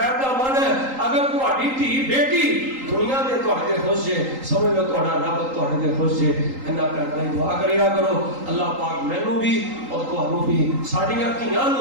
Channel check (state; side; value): late; left; 3.8 ms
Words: کا معنی ہے اگر تہاڈی دھی بیٹی دنیا دے تہاڈے خوش ہے سمجھ لو تہاڈا رب تہاڈے تے خوش ہے. انہاں کرنا دعا کریا کرو اللہ پاک مینوں بھی اور تہانوں بھی ساڈیاں دھیاں